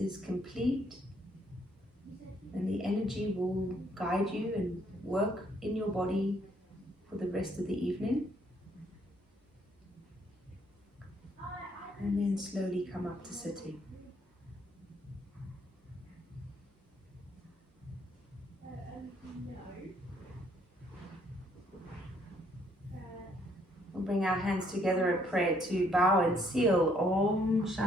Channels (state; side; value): normal; both; correlation 0.68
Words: complete and the energy will guide you and work in your body for the rest of the evening. And then slowly come up to sitting. We'll bring our hands together in prayer to bow and seal Om